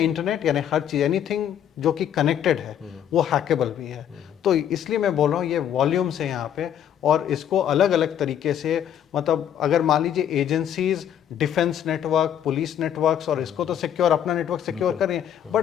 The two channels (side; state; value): right; quieter; 9.7 dB